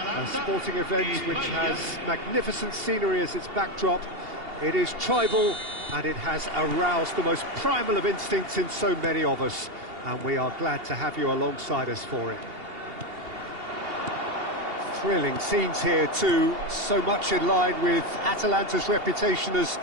sporting event which has magnificent scenery as its backdrop. It is tribal, and it has aroused the most primal of instincts in so many of us, and we are glad to have you alongside us for it. Thrilling scenes here too, so much in line with Atalanta's reputation as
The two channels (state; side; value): late; left; 2.8 ms